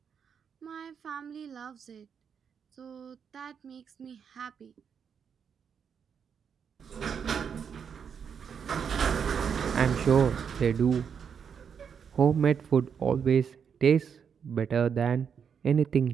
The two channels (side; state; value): left; quieter; 7.1 dB